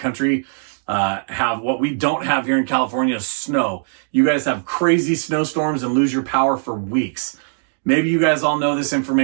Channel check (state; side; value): silent; left; digital silence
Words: have what we don't have here in California is snow. You guys have crazy snowstorms and lose your power for weeks. Maybe you guys all know this